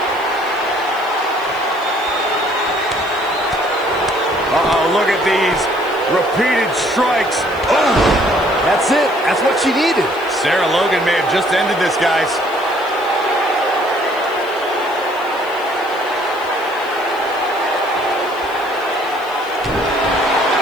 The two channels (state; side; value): noise; left; hiss, 23 dB below the sound